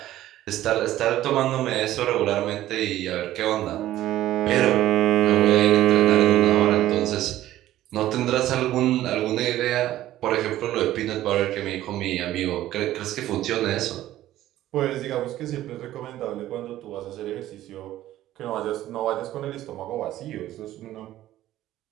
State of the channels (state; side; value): quieter; left; 14.0 dB